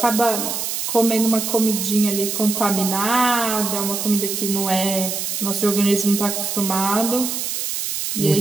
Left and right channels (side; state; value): right; noise; hiss, 3 dB below the sound